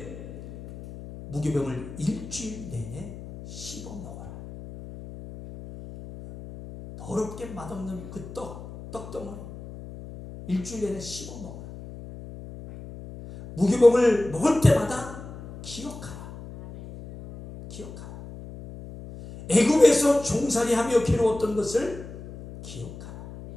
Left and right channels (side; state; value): left; noise; hum, 13 dB below the sound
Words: 무교병을 일주일 내내 씹어 먹어라. 더럽게 맛없는 그 떡덩어리 일주일 내내 씹어 먹어라. 무교병을 먹을 때마다 기억하라. 기억하라. 애굽에서 종살이하며 괴로웠던 것을 기억하라.